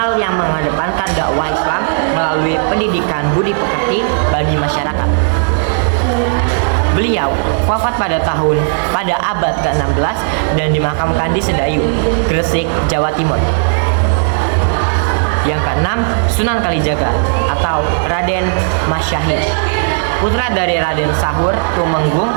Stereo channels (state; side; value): silent; left; 67 dB below the other